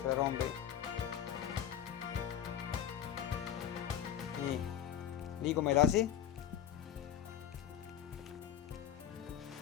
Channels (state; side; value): quieter; right; 9.7 dB